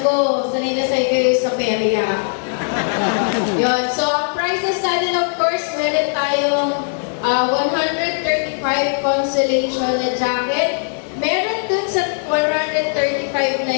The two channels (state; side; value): silent; right; 65 dB below the other